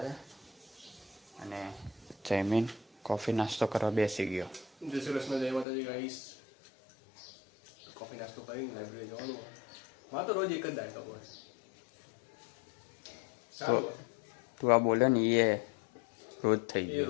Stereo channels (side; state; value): right; drops out; at 5.7 s